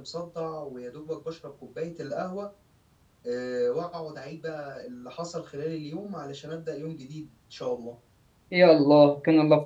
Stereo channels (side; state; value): both; identical; correlation 1.00